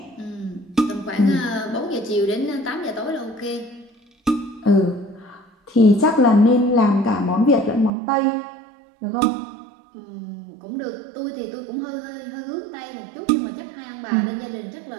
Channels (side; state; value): left; drops out; at 7.9 s